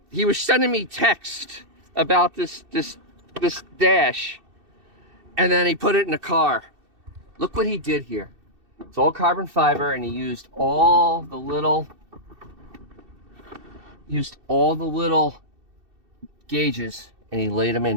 he was sending me text about this dash, and then he put it in the car. Look what he did here. It's all carbon fiber, and he used all the little gauges, and he laid them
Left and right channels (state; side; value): late; left; 2.7 ms